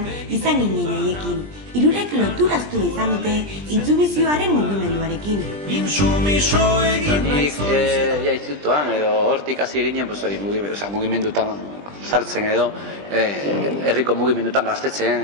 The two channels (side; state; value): left; late; 20 ms